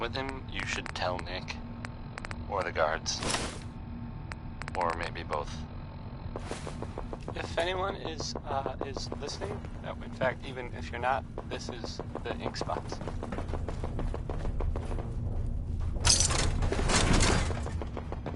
him, you should tell Nick. Or the guards. Or maybe both. If anyone is listening, in fact, even if you're not, this is the Ink Spots.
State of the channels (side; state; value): both; identical; correlation 1.00